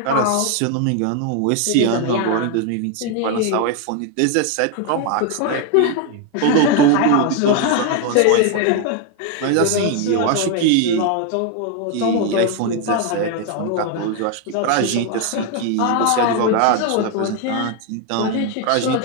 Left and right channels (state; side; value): different; both; correlation 0.01